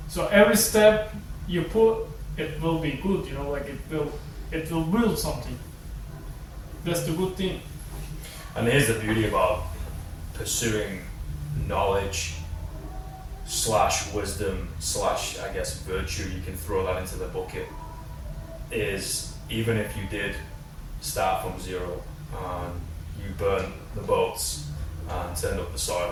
So every step you put, it will be good. It will build something. That's the good thing. And here's the beauty about pursuing knowledge / wisdom / I guess virtue, you can throw that into the bucket, is even if you did start from zero and you burned the boats and turned up the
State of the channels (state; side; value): identical; both; correlation 1.00